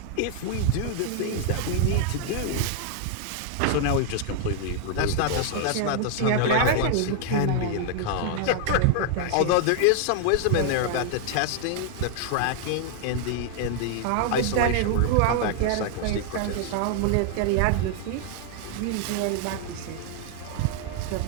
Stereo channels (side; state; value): both; different; correlation 0.00